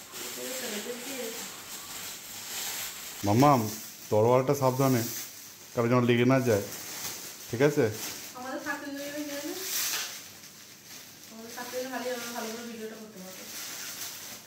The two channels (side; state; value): both; identical; correlation 1.00